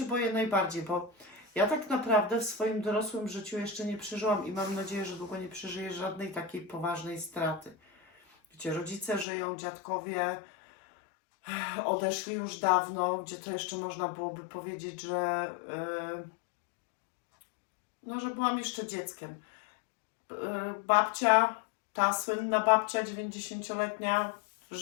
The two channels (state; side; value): drops out; right; at 9.2 s